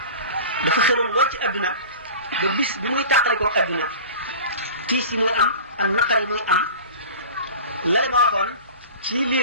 dafa xëroon lool ci adduna ba bis bi muy tàqali ko adduna tiis yi muy am ak naqar yi muy am lale ma waxoon ci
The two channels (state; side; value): inverted; both; correlation -0.37